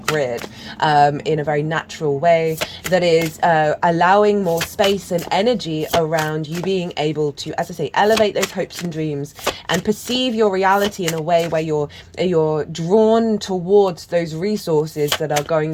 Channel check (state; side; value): identical; both; correlation 1.00